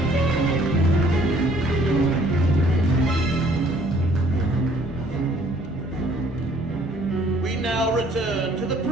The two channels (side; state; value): both; normal; correlation 0.59